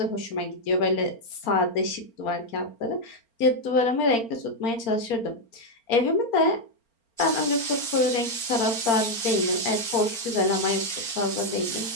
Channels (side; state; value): right; late; 4.4 ms